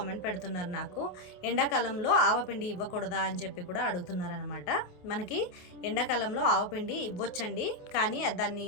పెడుతున్నారు నాకు, ఎండాకాలంలో ఆవపిండి ఇవ్వకూడదా అని చెప్పి కూడా అడుగుతున్నారనమాట. మనకి ఎండాకాలంలో ఆవపిండి ఇవ్వచ్చండి, కానీ దాన్ని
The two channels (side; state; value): right; late; 28 ms